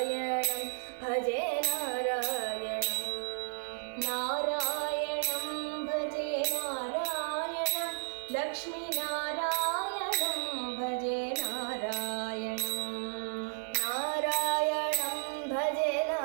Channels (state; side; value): silent; left; digital silence